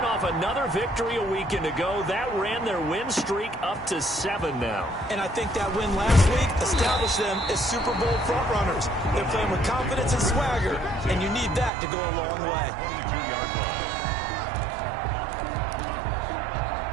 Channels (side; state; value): left; drops out; at 11.7 s